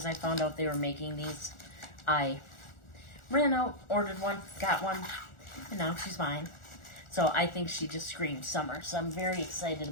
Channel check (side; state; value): right; late; 1.4 ms